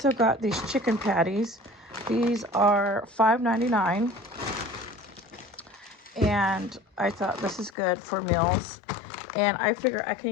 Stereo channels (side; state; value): right; drops out; at 7.7 s